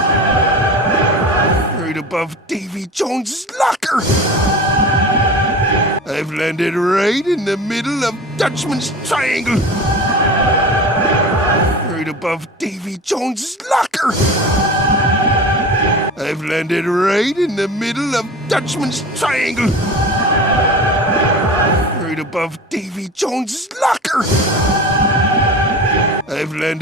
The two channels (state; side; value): normal; both; correlation 0.33